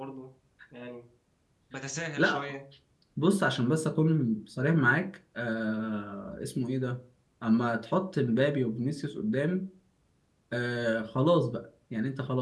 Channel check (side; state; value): both; identical; correlation 1.00